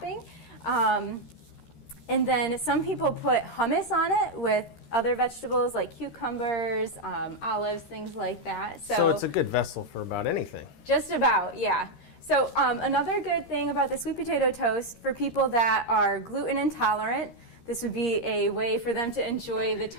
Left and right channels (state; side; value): late; right; 13 ms